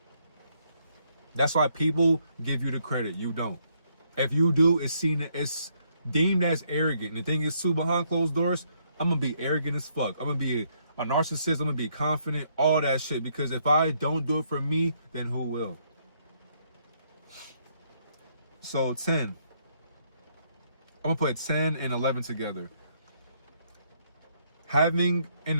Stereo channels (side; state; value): both; inverted; correlation -0.72